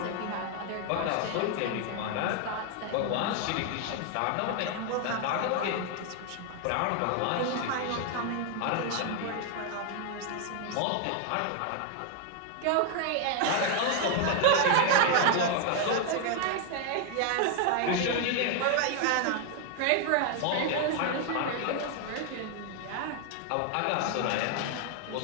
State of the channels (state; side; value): different; both; correlation 0.00